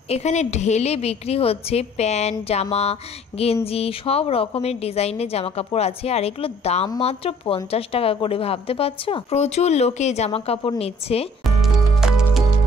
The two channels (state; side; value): normal; both; correlation 0.56